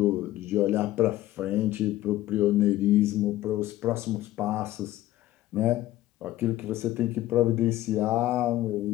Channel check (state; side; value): quieter; right; 15.2 dB